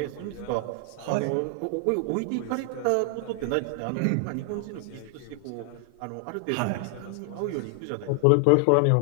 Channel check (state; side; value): different; both; correlation 0.00